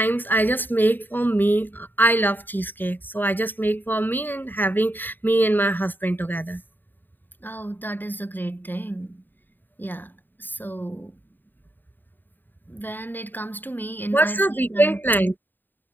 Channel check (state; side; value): late; right; 0.091 ms